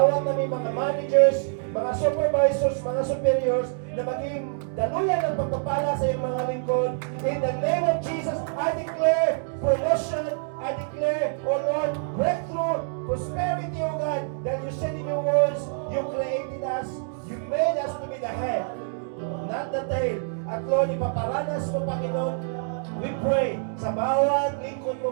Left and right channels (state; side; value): silent; left; digital silence